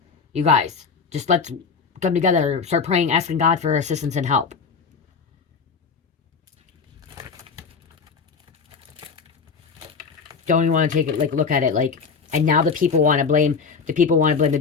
you guys, just let's come together, start praying, asking God for assistance and help. Don't even want to take it look at it like. And now the people want to blame the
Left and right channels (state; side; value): quieter; right; 5.4 dB